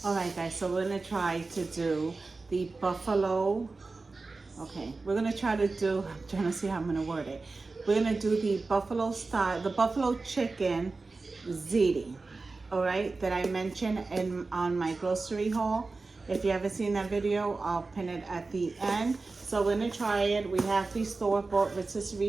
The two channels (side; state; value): left; quieter; 3.8 dB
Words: All right, guys, so we're gonna try to do the buffalo. Okay, we're gonna try to do, I'm trying to see how I'm gonna word it. We're gonna do the buffalo style, the buffalo chicken ziti, all right, that I mentioned on my grocery haul. If you haven't seen that video, I'll pin it at the end. So we're gonna try it. We have the store-bought